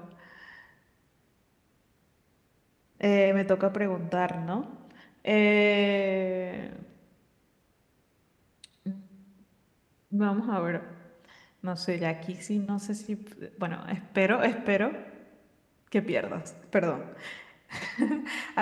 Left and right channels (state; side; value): identical; both; correlation 1.00